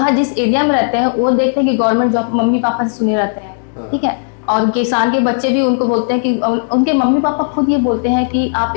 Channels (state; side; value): silent; right; digital silence